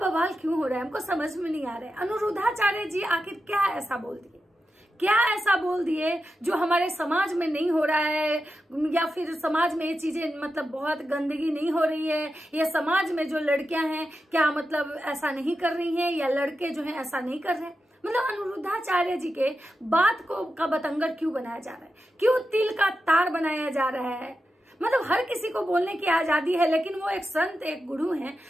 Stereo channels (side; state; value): both; normal; correlation 0.90